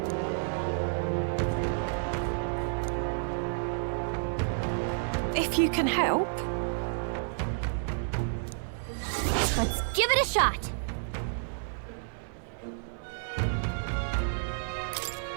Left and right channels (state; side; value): silent; left; 58 dB below the other